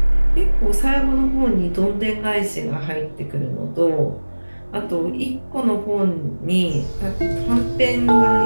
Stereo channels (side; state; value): both; inverted; correlation -1.00